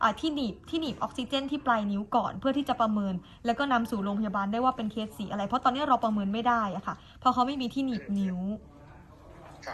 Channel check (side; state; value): both; identical; correlation 1.00